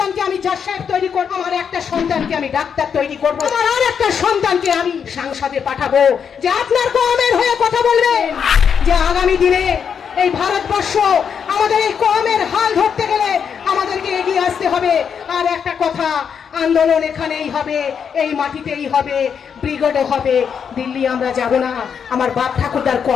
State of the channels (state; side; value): quieter; right; 7.1 dB